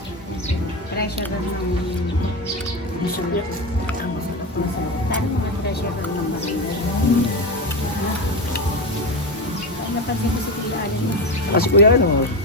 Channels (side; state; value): both; normal; correlation 0.18